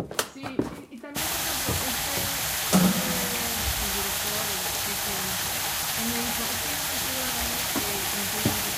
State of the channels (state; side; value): identical; both; correlation 1.00